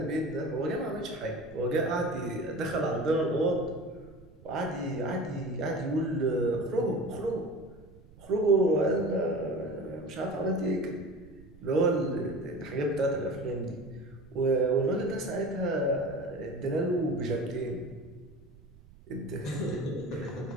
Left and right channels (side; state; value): right; noise; rumble, 22 dB below the sound